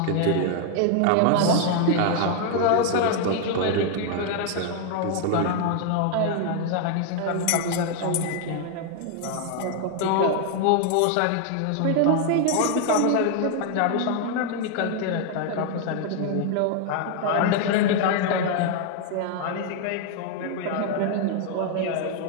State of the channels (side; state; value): both; different; correlation 0.00